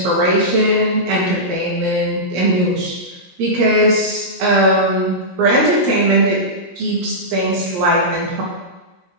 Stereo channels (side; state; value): left; late; 17 ms